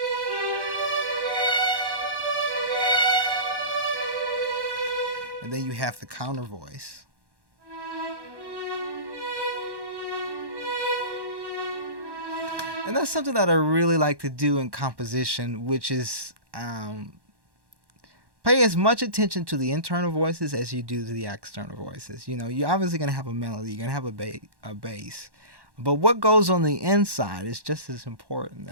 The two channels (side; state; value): left; late; 1.1 ms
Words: and then you have the counter voice. And that's something that I really like to do in composition, which is pay as much attention to the internal voices as you do to the external voices. You're obviously going to have a melody, you're going to have a bass. But what goes on the inside is just as important.